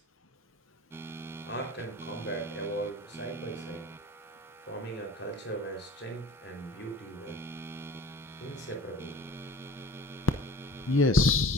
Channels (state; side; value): normal; both; correlation 0.42